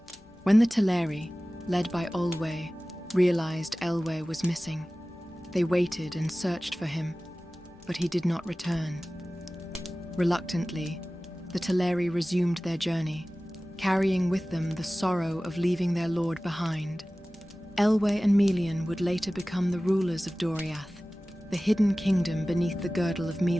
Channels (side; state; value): both; normal; correlation 0.97